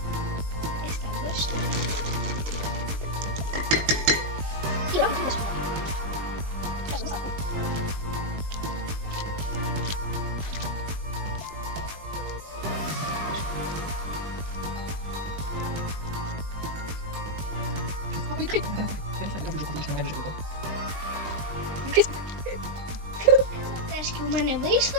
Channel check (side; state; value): left; late; 20 ms